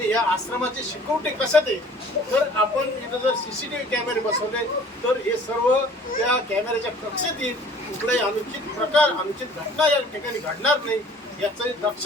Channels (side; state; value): both; normal; correlation 0.51